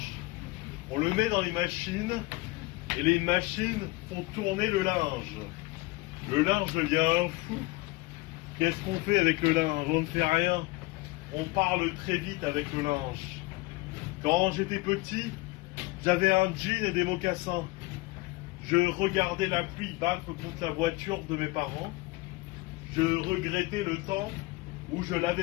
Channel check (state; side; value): quieter; right; 22.2 dB